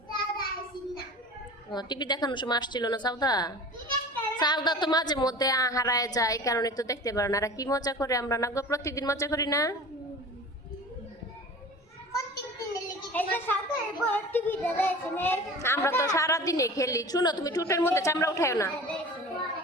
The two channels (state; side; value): normal; both; correlation 0.38